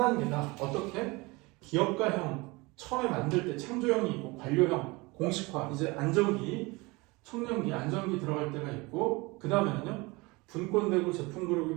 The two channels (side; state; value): left; quieter; 24.4 dB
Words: 어떻게? 기업가형, 처음에 만들 때 창조형이 있고 관료형, 공식화, 이제 안정기, 청년기, 안정기 들어갈 때가 있고 그 다음에는요. 분권되고 제품